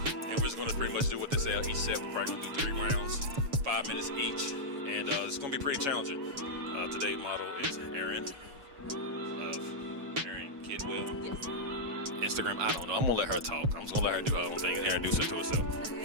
we're just going to pretty much do what they say each set. We're probably going to do 3 rounds, 5 minutes each, and it's going to be pretty challenging. Today's model is Erin of Erin Kidwell. Yes. Instagram, I don't know. I'm gonna let her talk. I'm just gonna let her do her own thing and introduce her to herself.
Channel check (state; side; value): late; left; 7.2 ms